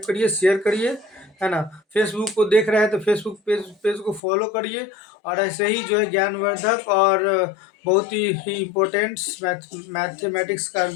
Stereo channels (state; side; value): drops out; right; at 4.2 s